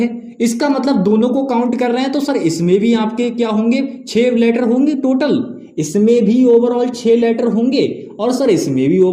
इसका मतलब दोनों को काउंट कर रहे हैं, तो सर इसमें भी आपके क्या होंगे? 6 लेटर होंगे टोटल, इसमें भी ओवरऑल 6 लेटर होंगे, और सर इसमें भी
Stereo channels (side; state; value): both; identical; correlation 1.00